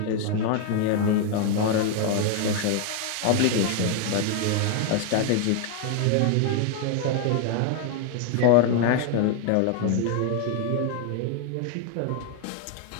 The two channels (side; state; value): both; different; correlation 0.01